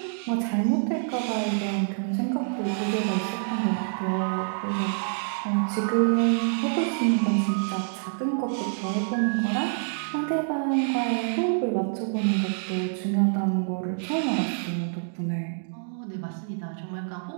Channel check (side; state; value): left; silent; digital silence